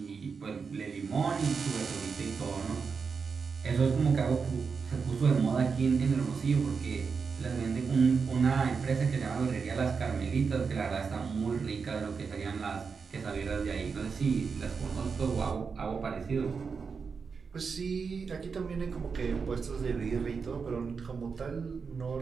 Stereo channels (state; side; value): quieter; left; 5.4 dB